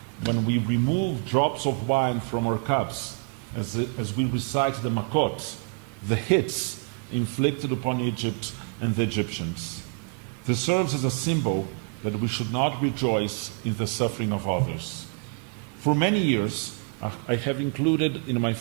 when we remove drops of wine from our cups as we recite the makot, the hits inflicted upon Egypt and the Egyptians. This serves as a symbol that we should not rejoice in the suffering of others. For many years, I have included in my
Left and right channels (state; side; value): quieter; left; 38.4 dB